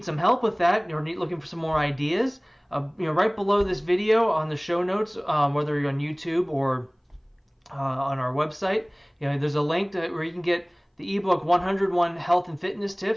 some help with that or looking for some more ideas, right below this video on the show notes, whether you're on YouTube or on our website, there's a link where you can get the ebook 101 Health and Fitness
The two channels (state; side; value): identical; both; correlation 1.00